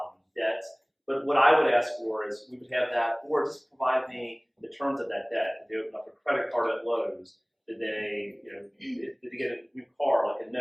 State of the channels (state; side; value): identical; both; correlation 1.00